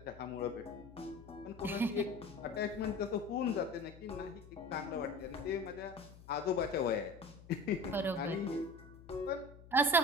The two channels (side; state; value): left; noise; hum, 19 dB below the sound